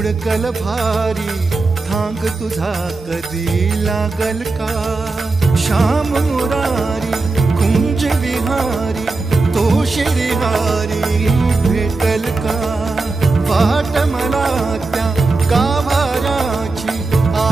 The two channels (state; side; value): quieter; left; 3.6 dB